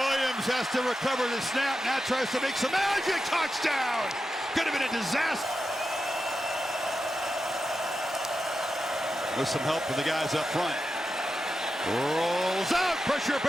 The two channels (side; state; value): both; normal; correlation 0.89